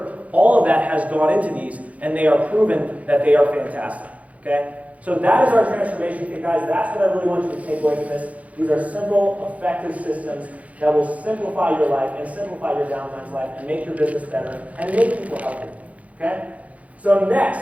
all of that has gone into these, and they are proven that they are fantastic, okay? So that is our transformation kit, guys. That's what I really want you to take away from this. These are simple, effective systems that will simplify your life and simplify your downline's life and make your business better and make people healthy. Okay? So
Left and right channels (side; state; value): left; late; 0.067 ms